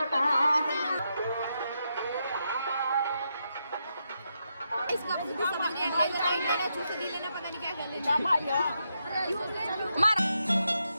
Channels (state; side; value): inverted; both; correlation -0.83